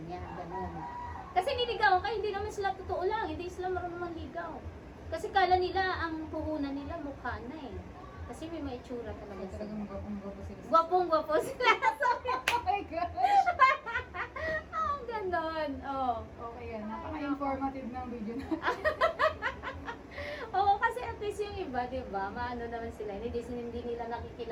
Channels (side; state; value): both; identical; correlation 1.00